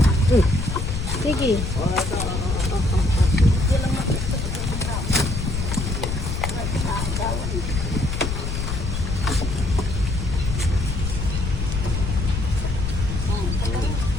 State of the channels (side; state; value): left; noise; rumble, 2 dB below the sound